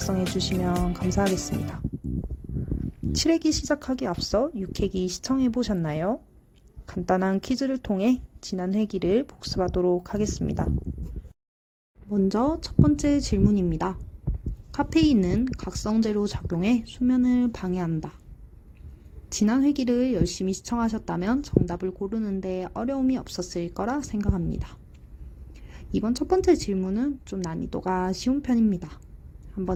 주시면 감사하겠습니다. 7회기 시작하기 앞서 6회기 시청해 보셨나요? 간단한 퀴즈를 통해 지난 회기를 복습하도록 하겠습니다. 먼저 첫 번째 질문입니다. 카페인은 각성제로 작용해 수면을 방해한다. 지난 회기를 열심히 시청하셨다면 정답을 고르는데 어려움이 없었을 거라 생각합니다. 이번 첫 번째 질문은 좀 난이도가 쉬운 편입니다.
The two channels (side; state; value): both; identical; correlation 1.00